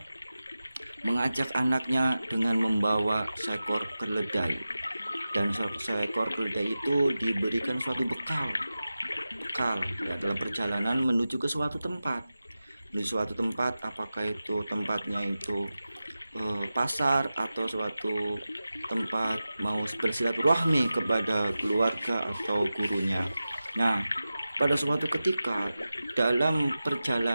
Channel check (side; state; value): both; inverted; correlation -0.94